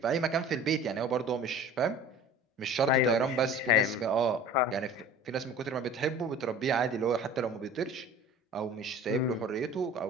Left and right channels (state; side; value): normal; both; correlation 0.42